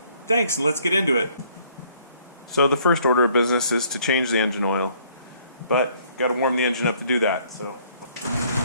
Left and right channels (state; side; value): inverted; both; correlation -0.62